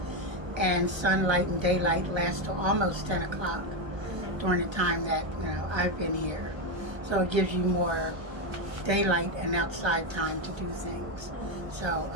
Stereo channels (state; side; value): late; left; 1.3 ms